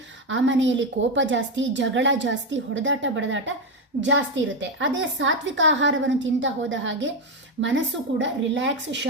ಆ ಮನೆಯಲ್ಲಿ ಕೋಪ ಜಾಸ್ತಿ, ಜಗಳ ಜಾಸ್ತಿ, ಹೊಡೆದಾಟ ಬಡದಾಟ ಜಾಸ್ತಿ ಇರುತ್ತೆ. ಅದೇ ಸಾತ್ವಿಕ ಆಹಾರವನ್ನು ತಿಂತಾ ಹೋದ ಹಾಗೆ ಮನಸ್ಸು ಕೂಡ ರಿಲ್ಯಾಕ್ಸ್,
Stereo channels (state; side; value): normal; both; correlation 0.09